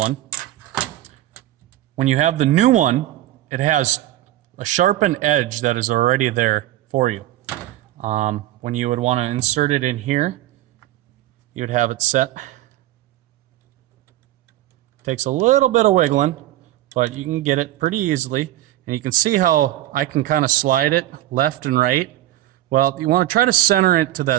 When you have the new one, it has a sharpened edge that is already there for you. When you would want to insert it in here, you would have it set. Takes a little bit of wiggling, but you can get it pretty easily. And you can see how I can kind of slide it left and right. Well, you want to try to center it to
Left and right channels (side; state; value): left; quieter; 14.7 dB